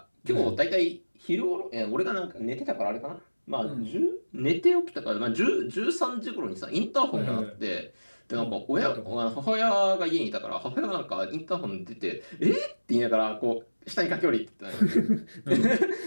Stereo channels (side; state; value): both; inverted; correlation -1.00